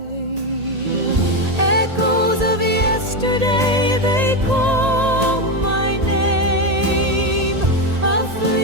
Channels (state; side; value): late; left; 1.8 ms